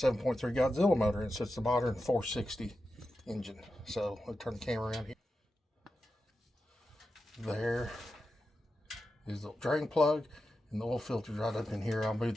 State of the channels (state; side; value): normal; both; correlation 0.90